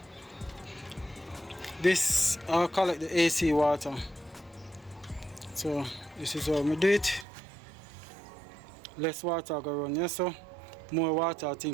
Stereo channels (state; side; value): drops out; left; at 7.2 s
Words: This I'll collect the AC water. So this is how we do it. Less water go run here, so more water I